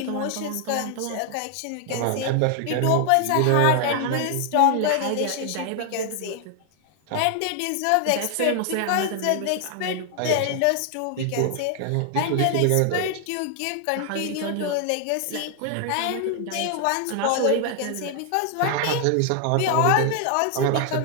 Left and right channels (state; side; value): different; both; correlation 0.00